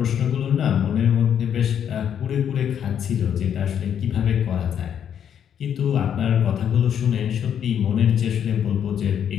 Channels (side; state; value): right; quieter; 8.8 dB